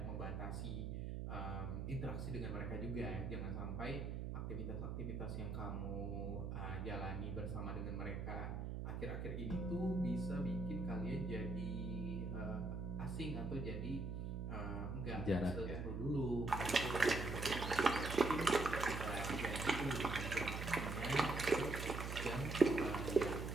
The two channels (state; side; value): noise; right; hum, 4 dB below the sound